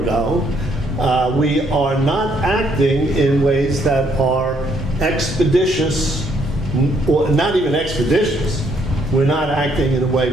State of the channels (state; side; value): normal; both; correlation 0.70